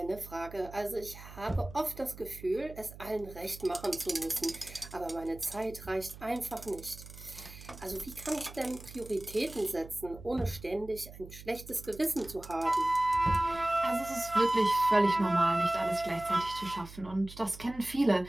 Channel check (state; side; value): noise; right; hum, 16 dB below the sound